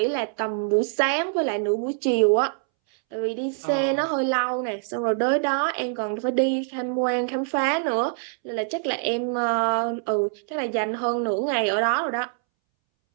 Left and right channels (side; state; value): left; silent; 62 dB below the other